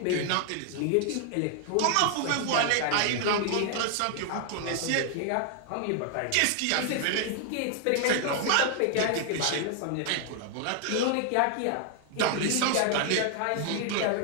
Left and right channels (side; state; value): both; different; correlation 0.00